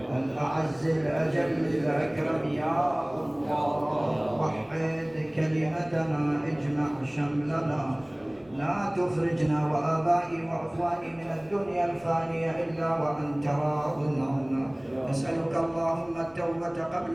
الأعز الأجل الأكرم يا الله. وحد كلمتنا اجمع شملنا لا تخرجنا وآبائي وأخواني من الدنيا الفانية إلا وأنت راض عنا. نسألك اللهم التوبة قبل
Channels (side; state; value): left; noise; rumble, 30 dB below the sound